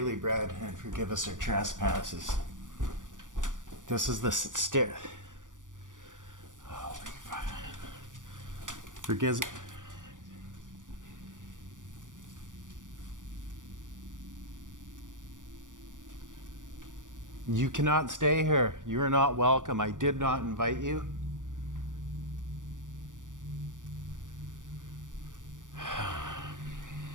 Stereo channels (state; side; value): late; left; 0.87 ms